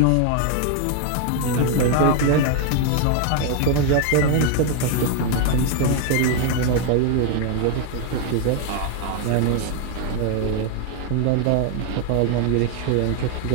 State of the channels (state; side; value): different; both; correlation 0.00